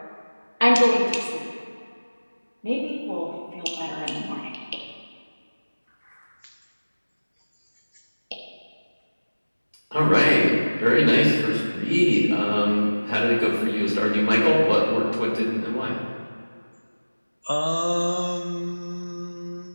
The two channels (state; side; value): inverted; both; correlation -1.00